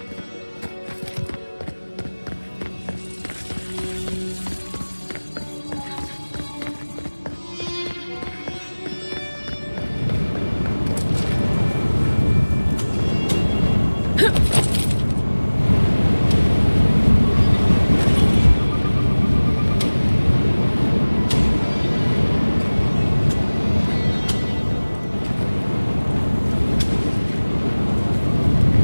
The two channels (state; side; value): inverted; both; correlation -1.00